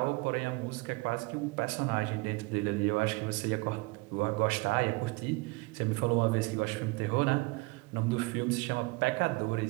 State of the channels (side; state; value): left; quieter; 25.3 dB